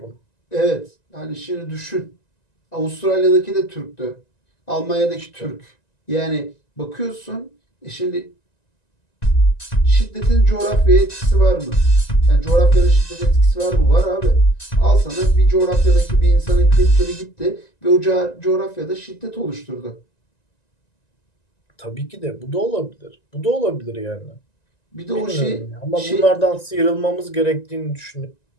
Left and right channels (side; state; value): right; late; 1.9 ms